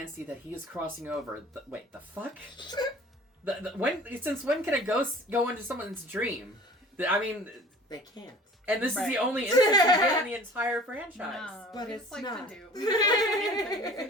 that he is crossing over. Wait, the fuck? Since when can a ghost go into someone's dream? I mean, They can't. and this is Right. the only instance we get in the entire franchise. no, But we it's just like not. to do.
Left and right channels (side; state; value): both; normal; correlation 0.45